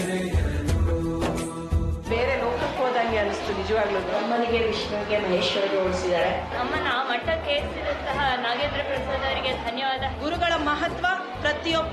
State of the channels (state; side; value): identical; both; correlation 1.00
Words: ಬೇರೆ ಲೋಕಕ್ಕೆ ಹೋದಂಗೆ ಅನಿಸ್ತು ನಿಜವಾಗ್ಲೂ. ಅಮ್ಮನಿಗೆ ವಿಷ್ಣುವಿಗೆ ಮಹೇಶ್ವರಿಗೆ ಹೋಲಿಸಿದ್ದಾರೆ. ಅಮ್ಮನ ಮಠಕ್ಕೆ ಸೇರಿದಂತಹ ನಾಗೇಂದ್ರ ಪ್ರಸಾದ್ ಅವರಿಗೆ ಧನ್ಯವಾದ. ಗುರುಗಳ ಮಹತ್ವ